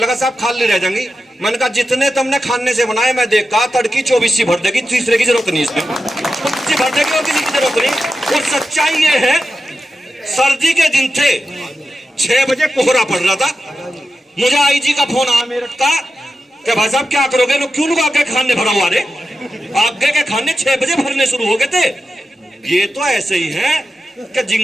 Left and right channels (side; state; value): both; normal; correlation 0.90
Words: साहब खाली रह जाएंगी। मैंने कहा जितने तुमने खाने से बनाए मैं देखा, तड़की 24 भर देगी, तीसरे की जरूरत नहीं, इसमें भर देगी और किसी की जरूरत नहीं। और सच्चाई ये है, सर्दी के दिन थे, 6 बजे कोहरा पड़ रहा था, मुझे आईजी का फोन आया मेरठ का कि भाई साहब क्या करोगे? लोग क्यों लोग आगे खाने भरा हुआ रे? आगे के खाने 6 बजे भरने शुरू हो गए थे। ये तो ऐसे ही है कि